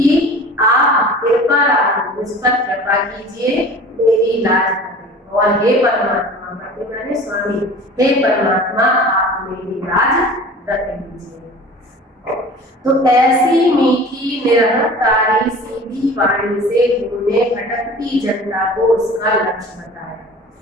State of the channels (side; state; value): both; normal; correlation 0.41